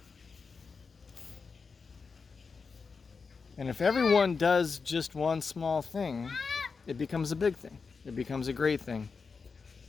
And if everyone does just one small thing, it becomes a big thing. It becomes a great thing.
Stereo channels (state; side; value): quieter; right; 5.0 dB